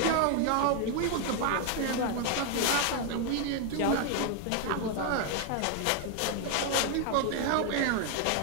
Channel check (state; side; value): different; both; correlation 0.00